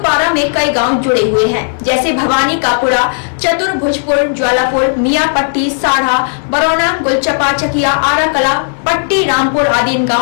में कई गांव जुड़े हुए हैं, जैसे भवानी कापुरा, चतुर्भुजपुर, ज्वालापुर, मियापट्टी, साढ़ा, बरौना, गुलचपा, चकिया, आराकला, पट्टी, रामपुर आदि इन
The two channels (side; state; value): right; silent; digital silence